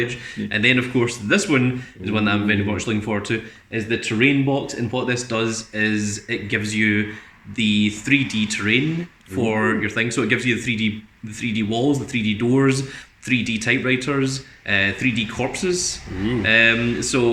And then of course this one is one that I'm very much looking forward to, is the terrain box. And what this does is it gives you the 3D terrain for your thing. So it gives you the 3D walls, the 3D doors, 3D typewriters, 3D corpses.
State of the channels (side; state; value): both; identical; correlation 1.00